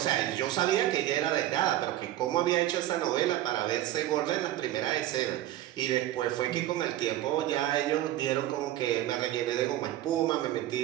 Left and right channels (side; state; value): left; quieter; 13.9 dB